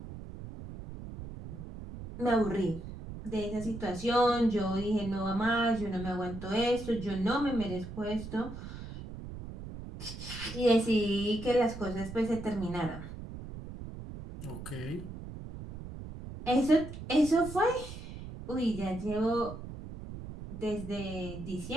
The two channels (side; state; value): right; noise; rumble, 11 dB below the sound